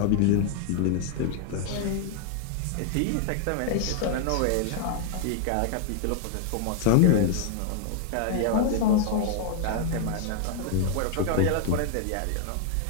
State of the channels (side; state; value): both; different; correlation 0.00